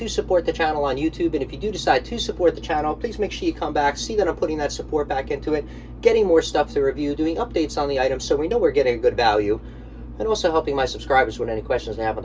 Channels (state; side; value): identical; both; correlation 1.00